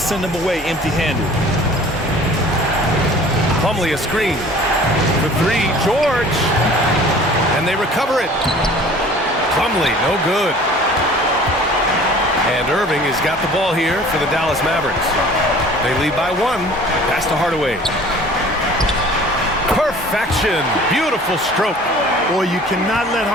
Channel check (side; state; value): both; normal; correlation 0.48